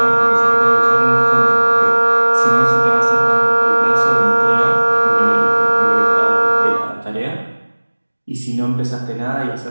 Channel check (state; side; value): inverted; both; correlation -1.00